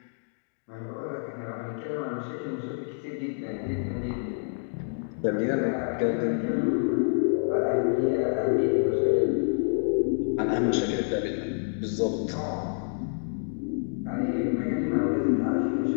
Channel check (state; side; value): silent; right; digital silence